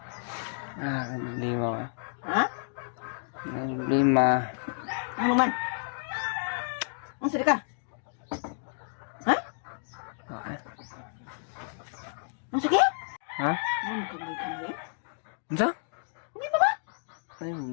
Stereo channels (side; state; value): right; silent; digital silence